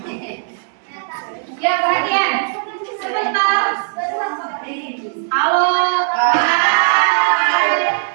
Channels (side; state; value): left; silent; digital silence